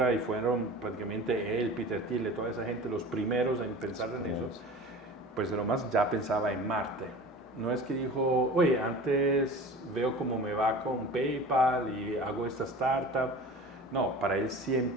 y fueron prácticamente él, Peter Thiel, toda esa gente los primeros en pensar en eso, pues Elon Musk ya pensaba en Marte. No es que dijo, oye, antes veo cómo me va con PayPal y hago esta startup. No, para él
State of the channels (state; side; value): normal; both; correlation 0.37